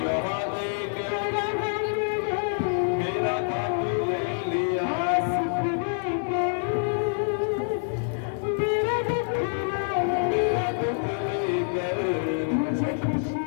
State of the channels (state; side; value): silent; right; digital silence